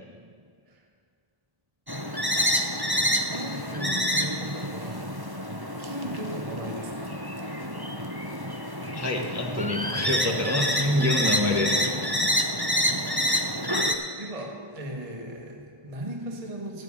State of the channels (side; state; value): left; late; 1.1 ms